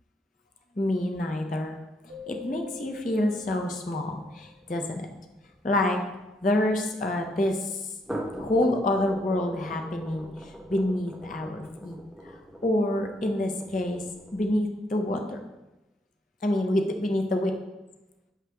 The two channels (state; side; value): normal; both; correlation 0.73